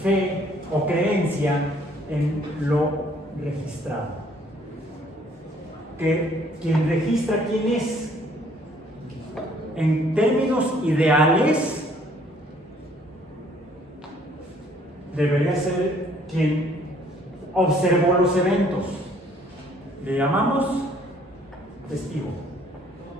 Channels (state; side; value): normal; both; correlation 0.61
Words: o creencia en lo registrado. Que quien registra quién es, en términos ideales, debería ser quien observó los eventos. Le llamamos testigo.